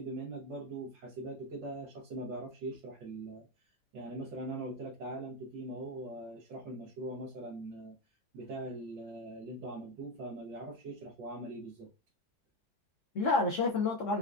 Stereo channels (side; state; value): both; normal; correlation 0.14